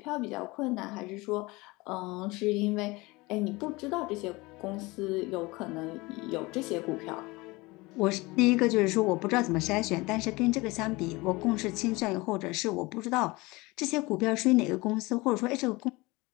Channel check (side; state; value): right; quieter; 22.9 dB